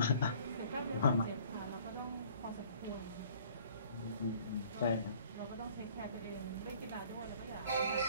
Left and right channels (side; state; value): both; inverted; correlation -0.54